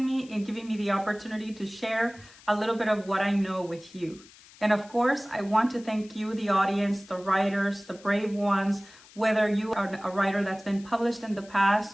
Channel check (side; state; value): left; noise; hiss, 23 dB below the sound